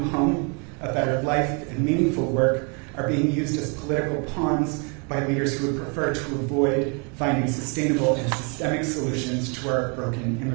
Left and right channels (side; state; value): left; quieter; 35.1 dB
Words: home, a better life, and meaningful work are being used as political pawns by leaders who would prefer to avoid finding sustainable and systemic solutions to our broken